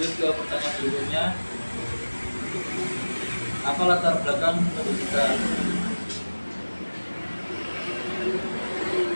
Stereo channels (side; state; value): both; inverted; correlation -1.00